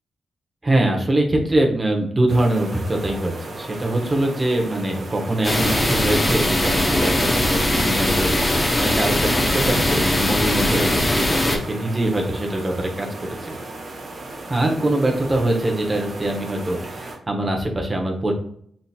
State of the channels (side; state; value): both; normal; correlation 0.91